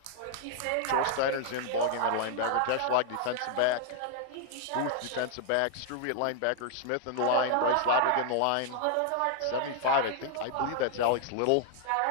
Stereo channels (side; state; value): both; different; correlation 0.00